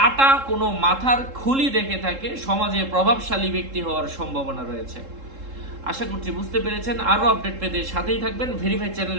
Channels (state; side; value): late; left; 3.7 ms